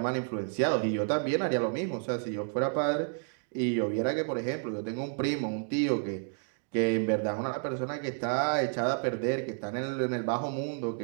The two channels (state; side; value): silent; left; 57 dB below the other